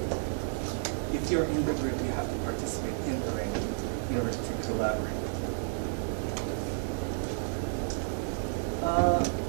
if you're in the group, you have to participate in the writing in order to collaborate.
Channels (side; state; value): left; silent; digital silence